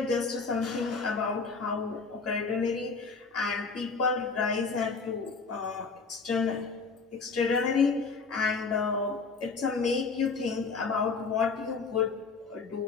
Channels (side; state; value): right; quieter; 4.6 dB